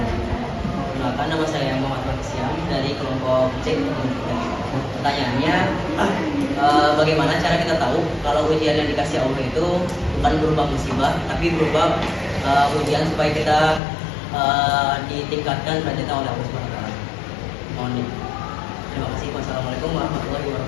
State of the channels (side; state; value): right; drops out; at 13.8 s